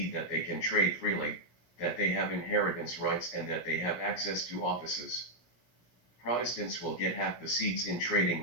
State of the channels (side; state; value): right; late; 17 ms